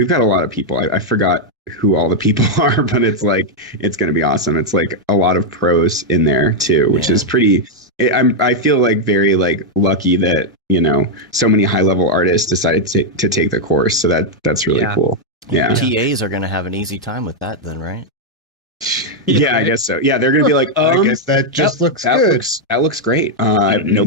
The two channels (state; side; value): normal; both; correlation -0.01